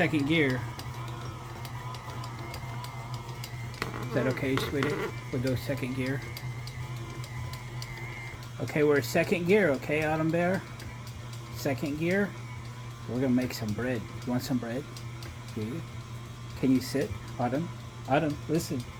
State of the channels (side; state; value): both; identical; correlation 1.00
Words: gear. Is that okay, sweetie? We'll go second gear. Okay, we're at second gear, okay, Autumn Bear? Second gear. We're gonna make some bread. You want some bread? Yeah. Can you sit, Autumn? Autumn, listen.